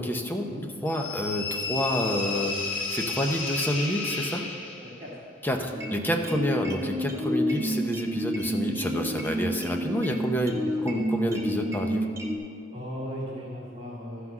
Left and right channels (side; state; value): both; normal; correlation 0.65